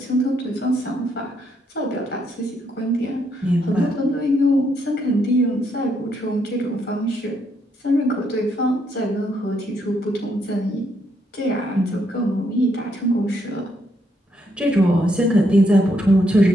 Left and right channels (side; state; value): both; normal; correlation 0.75